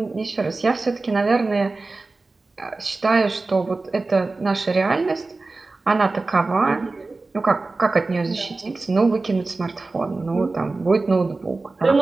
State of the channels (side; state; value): left; quieter; 3.5 dB